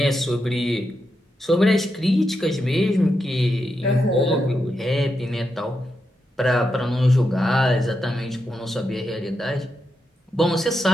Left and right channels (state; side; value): normal; both; correlation 0.85